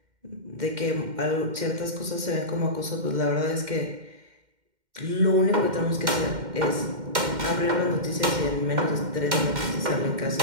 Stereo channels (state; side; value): late; left; 2.1 ms